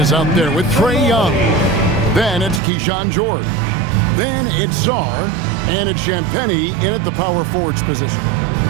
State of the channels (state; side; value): drops out; left; at 2.6 s